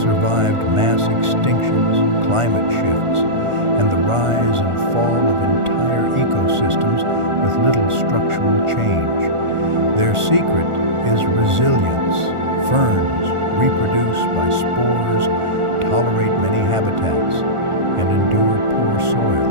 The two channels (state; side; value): late; left; 1.4 ms